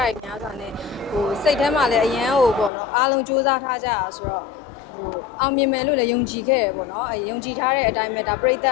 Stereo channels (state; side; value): drops out; right; at 2.7 s